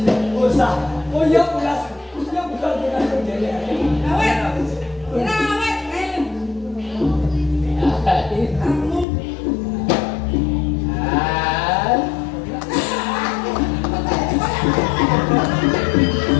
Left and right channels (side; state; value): right; drops out; at 9.1 s